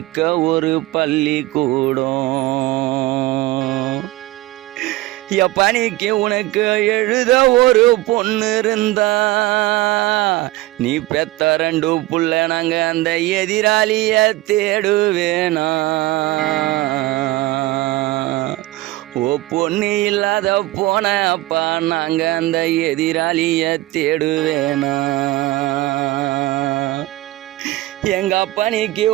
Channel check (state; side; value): quieter; left; 18.2 dB